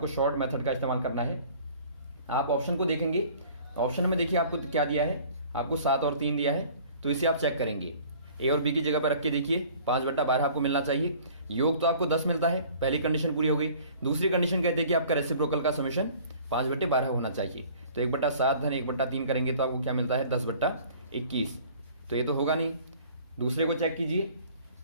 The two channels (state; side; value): inverted; both; correlation -0.50